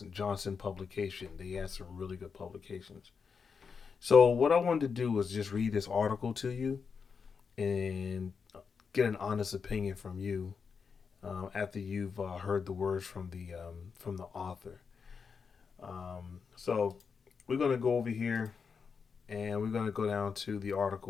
Johnson publication. They had some really good publications. So what I wanted to do was just read this article to you and get an honest opinion from you after you've heard the words from the author. So we're gonna go over here and we're gonna go down to the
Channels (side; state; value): right; quieter; 5.7 dB